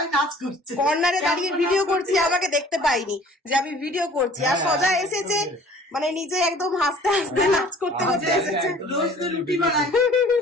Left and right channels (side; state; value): both; normal; correlation 0.51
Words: নাচ করছে, কর্নারে দাঁড়িয়ে ভিডিও করছি, আমাকে দেখতে পাইনি যে আমি ভিডিও করছি। আর সজা এসেছে মানে নিজে একদম হাসতে হাসতে নাচ করতে করতে এসেছে। রোজ তো রুটি বানাই,